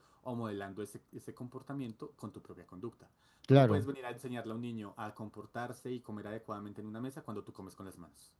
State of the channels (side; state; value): both; identical; correlation 1.00